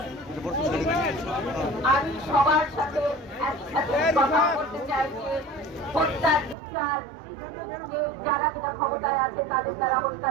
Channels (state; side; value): drops out; left; at 6.6 s